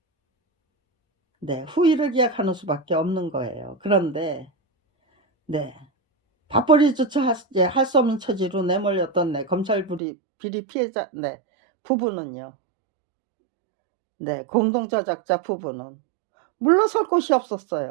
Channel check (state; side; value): drops out; left; at 10.0 s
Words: 네, 후위를 기약하는 수밖에 없는 거예요. 그런데 네, 밥벌이조차 할 수 없는 처지로 내몰렸던 네, 검찰 비리 피해자 네, 부부는요. 네, 공동저작자 부부는 물러설 곳이